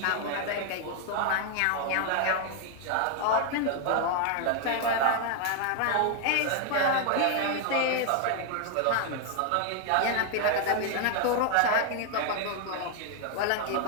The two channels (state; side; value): different; both; correlation 0.00